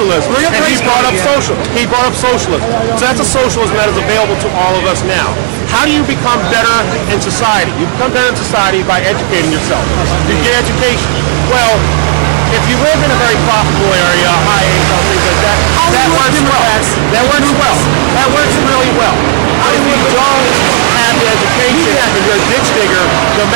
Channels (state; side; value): silent; left; digital silence